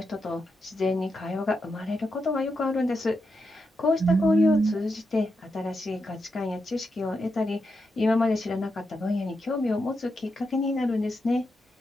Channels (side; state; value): both; normal; correlation 0.85